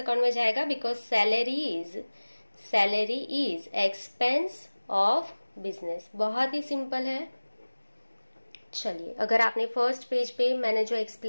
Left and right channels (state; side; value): inverted; both; correlation -1.00